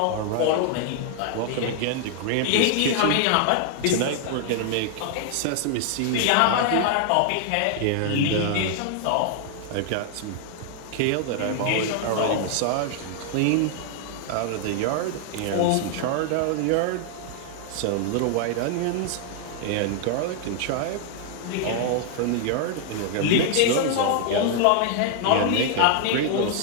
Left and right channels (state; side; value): different; both; correlation 0.00